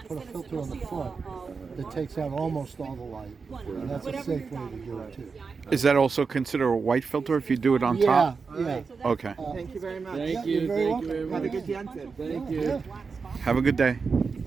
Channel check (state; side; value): quieter; left; 5.0 dB